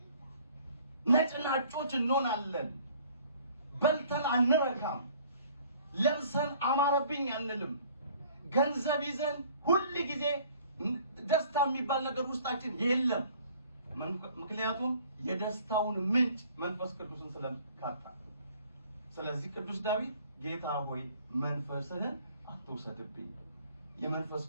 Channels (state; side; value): inverted; both; correlation -0.54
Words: ነጭናጮች እንሆናለን። በልተን አንረካም። ለብሰን አማረብኝ አንልም። ገንዘብ ይዘን ሁል ጊዜ ደስታ የሚባል ነገር ውስጣችን የለም። ምክንያቱም የደስታውን ምንጭ መንፈስ ቅዱስን ስለካጣ። ስለዚህ ቅዱስ ዳዊት ጌታ ሆይ መንፈስህን አትውሰድብኝ፣ የመንፈስ